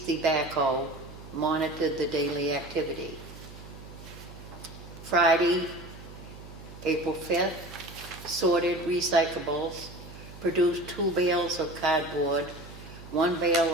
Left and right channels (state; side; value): noise; right; hum, 16 dB below the sound